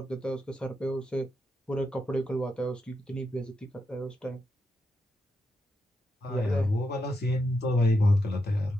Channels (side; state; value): both; normal; correlation 0.84